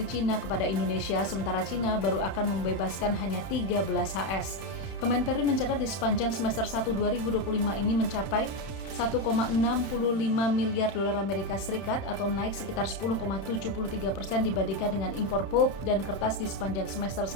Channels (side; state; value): right; late; 31 ms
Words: Cina kepada Indonesia, sementara Cina baru akan membebaskan hanya 13 HS. Kemenperin mencatat di sepanjang semester 1 2025 ini mencapai 1,65 miliar dolar Amerika Serikat atau naik sekitar 10,73% dibandingkan dengan impor pulp dan kertas di sepanjang semester